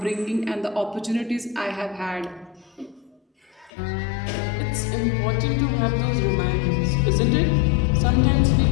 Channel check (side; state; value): right; drops out; at 3.7 s